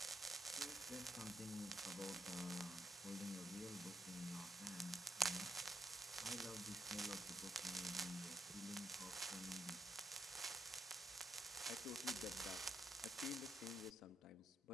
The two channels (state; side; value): normal; both; correlation 0.77